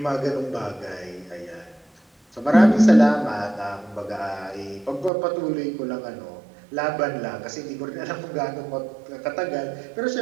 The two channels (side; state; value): left; drops out; at 5.1 s